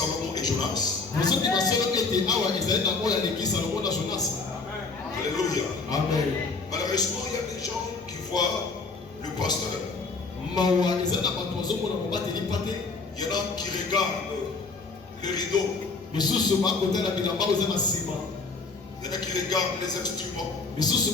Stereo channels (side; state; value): right; quieter; 4.1 dB